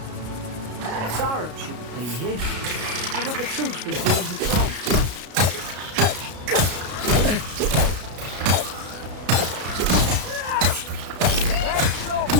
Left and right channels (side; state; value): left; late; 33 ms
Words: Sarup shouldn't be here. Haven't the troops been doing patrol? There's your